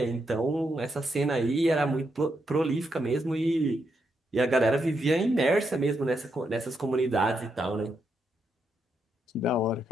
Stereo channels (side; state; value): both; normal; correlation 0.81